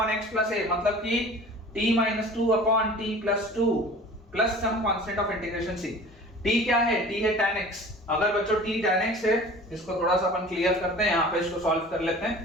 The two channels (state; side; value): normal; both; correlation 0.43